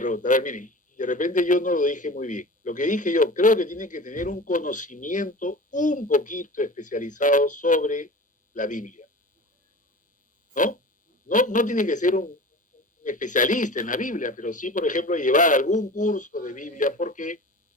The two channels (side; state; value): both; normal; correlation 0.36